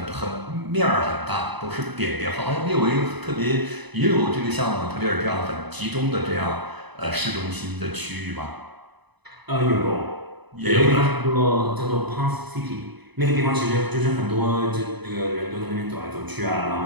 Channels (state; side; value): late; left; 0.99 ms